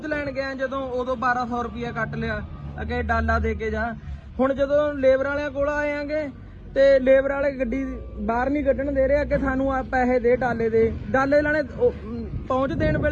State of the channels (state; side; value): identical; both; correlation 1.00